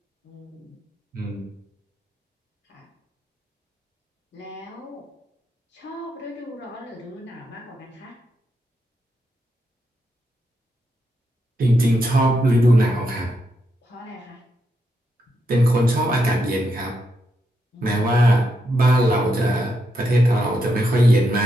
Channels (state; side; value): normal; both; correlation 0.82